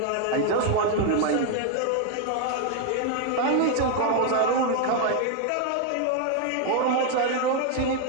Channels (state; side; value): different; both; correlation 0.01